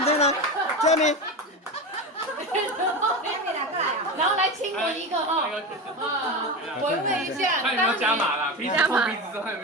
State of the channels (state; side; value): normal; both; correlation 0.22